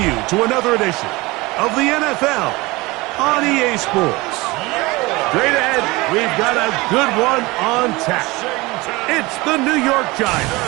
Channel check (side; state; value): left; quieter; 22.4 dB